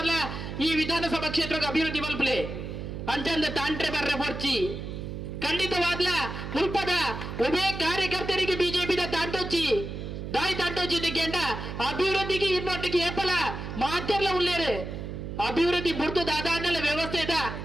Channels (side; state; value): right; noise; hum, 7 dB below the sound